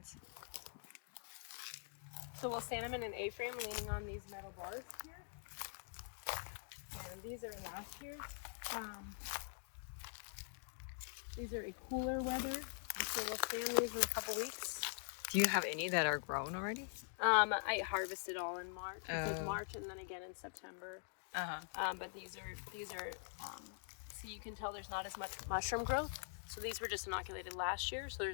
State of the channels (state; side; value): silent; right; digital silence